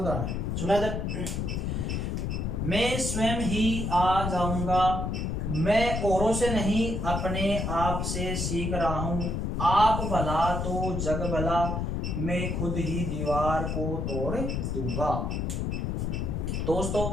सुना इधर। मैं स्वयं ही आ जाऊंगा, मैं औरों से नहीं अपने आप से सीख रहा हूं, आप भला तो जग भला, मैं खुद ही दीवार को तोड़ दूंगा।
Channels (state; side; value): noise; left; rumble, 1 dB below the sound